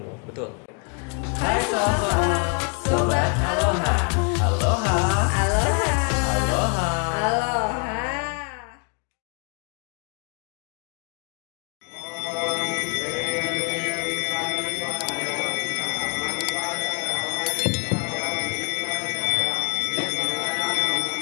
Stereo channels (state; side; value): quieter; right; 37.0 dB